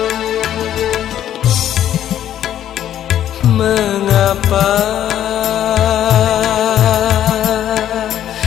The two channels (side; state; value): right; quieter; 11.1 dB